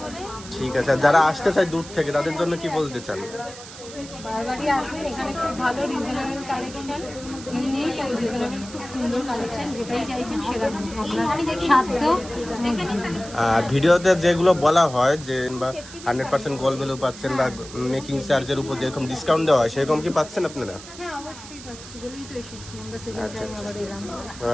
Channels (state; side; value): noise; right; hiss, 15 dB below the sound